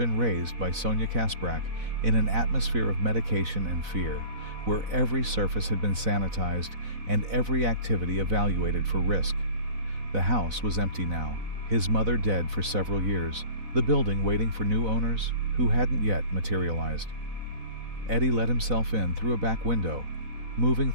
raised by Sonia Kasprak in an atmosphere of medication and fear, where every surface had been sanitized and every activity evaluated for risk. The house was empty now, his mother dead for several years, the building waiting for new owners who hadn't yet materialized. Eddie let himself in through a back window, moving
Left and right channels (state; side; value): late; left; 4.0 ms